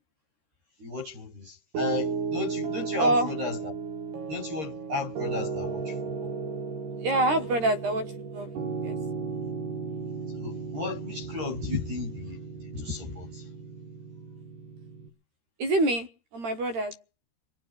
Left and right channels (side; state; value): left; late; 13 ms